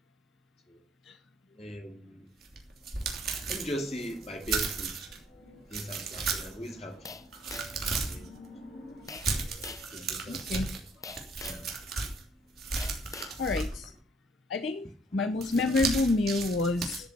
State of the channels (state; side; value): normal; both; correlation 0.63